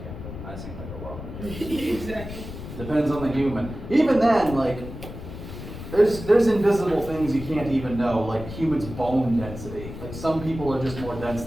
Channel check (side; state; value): left; noise; rumble, 10 dB below the sound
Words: I seem like a rock. Exactly. Depends on the human. Even then, like, there's invisible things you can't even know, like humans' bone density. Like, some people are just more dense